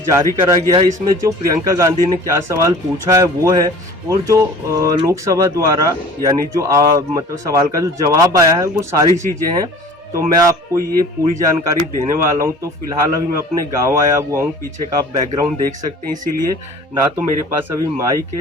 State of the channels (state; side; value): normal; both; correlation 0.45